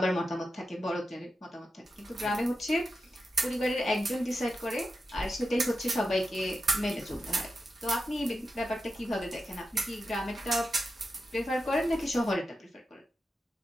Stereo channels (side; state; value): both; normal; correlation 0.89